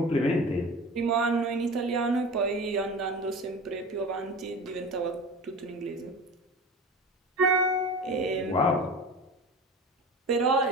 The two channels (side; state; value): both; normal; correlation 0.33